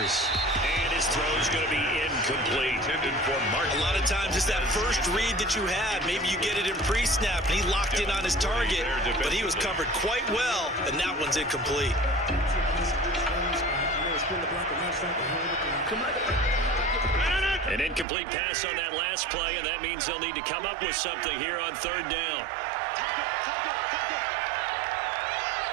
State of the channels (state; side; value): drops out; left; at 18.1 s